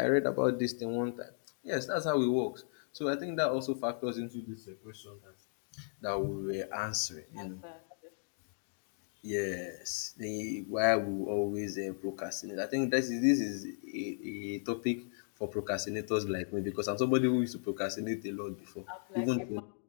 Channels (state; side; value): silent; right; digital silence